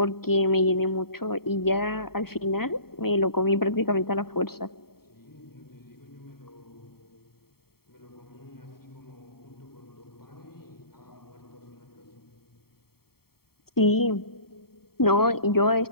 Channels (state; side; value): late; right; 0.95 ms